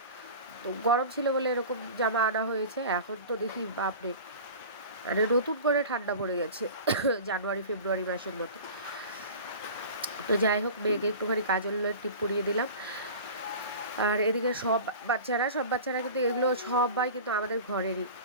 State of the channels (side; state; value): both; inverted; correlation -0.37